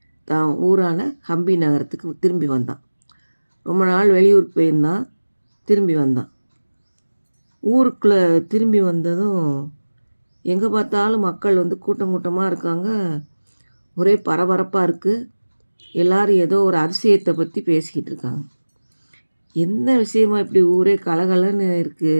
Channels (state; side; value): inverted; both; correlation -1.00